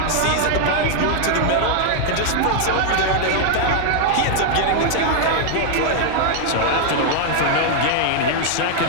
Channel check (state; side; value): different; both; correlation 0.00